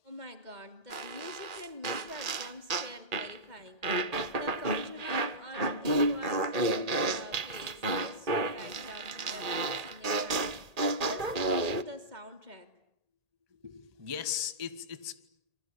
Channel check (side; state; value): left; late; 1.8 ms